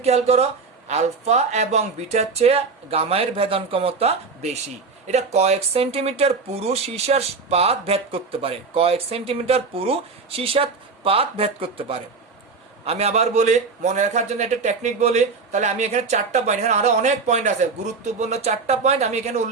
খেয়াল করো, আলফা এবং বিটার চেয়ে গামায়ের ভেদন ক্ষমতা বেশি। এটা কয়েক সেন্টিমিটার পুরু সীসার পাত ভেদ করতে পারে, কয়েক সেন্টিমিটার পুরু সীসার পাত ভেদ করতে পারে। আমি আবার বলি, মনে রাখার জন্য একটা টেকনিক বলি, তাহলে আমি এখানে 4টা পয়েন্ট, এখানে আরো অনেক পয়েন্ট আছে, গুরুত্বপূর্ণ 4টা পয়েন্ট আমি এখানে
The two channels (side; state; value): left; quieter; 4.6 dB